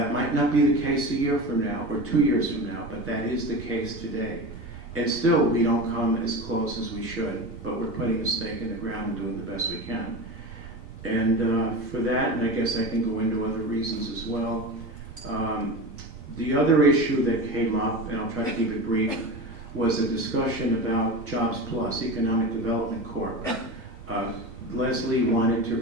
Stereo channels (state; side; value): normal; both; correlation 0.27